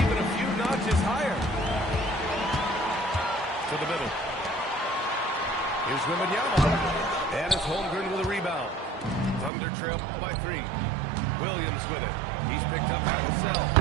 a few notches higher. To the middle. Here's Wembanyama. And it's Holmgren with a rebound. Thunder trail by 3. Williams with it. He's picked up at himself.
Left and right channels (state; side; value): drops out; left; at 9.5 s